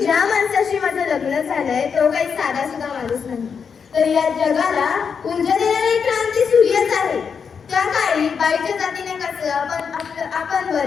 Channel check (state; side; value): quieter; right; 6.3 dB